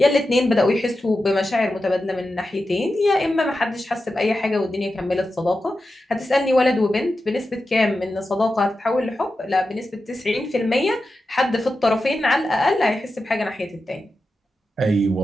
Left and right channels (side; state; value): both; normal; correlation 0.91